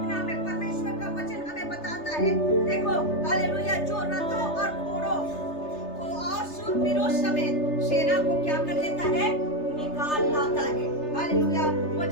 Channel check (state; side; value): late; right; 3.3 ms